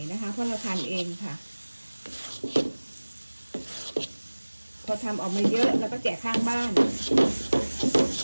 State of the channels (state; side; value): inverted; both; correlation -1.00